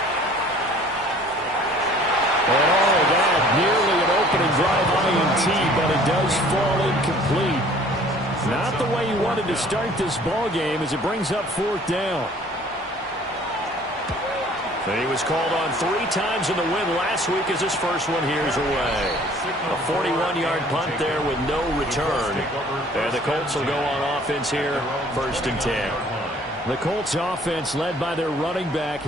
And all that, nearly an opening drive INT, but it does fall incomplete. Not the way he wanted to start this ball game as it brings up 4th down. He was called on 3 times in the win last week as his first one here's away. A 41-yard punt there with no return. And the Colts will go on offense here, 1st and 10. The Colts offense led by their running back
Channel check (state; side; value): noise; left; hum, 28 dB below the sound